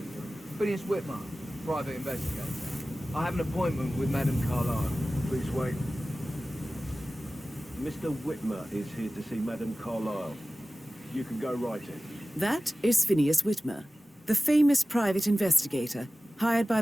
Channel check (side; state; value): both; normal; correlation 0.96